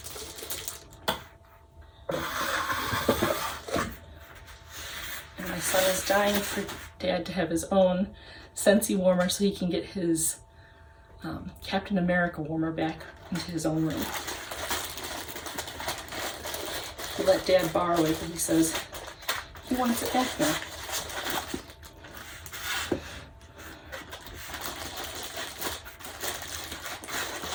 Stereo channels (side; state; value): both; identical; correlation 1.00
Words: my son is dying for Dad to have his own Scentsy warmer so he can get his Captain America warmer back into his own room. He let Dad borrow it, but he says he wants it back now.